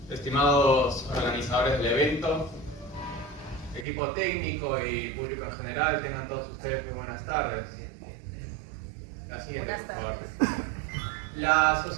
Estimados organizadores del evento, equipo técnico y público en general, tengan todos ustedes muy buenas tardes. La siguiente, por favor. La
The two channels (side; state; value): left; drops out; at 3.9 s